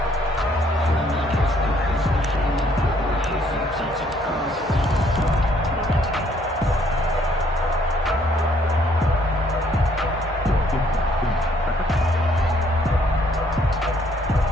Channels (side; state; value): both; normal; correlation 0.66